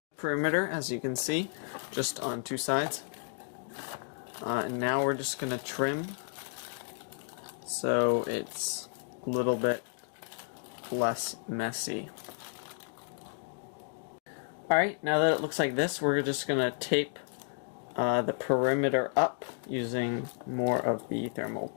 Perimeter, as you can see, just on two sides. And now we're just going to trim so it's a little bit less messy. Alright, now that it looks like this, we're just going to tape the perimeter up using more of the thermal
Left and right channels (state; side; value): silent; right; digital silence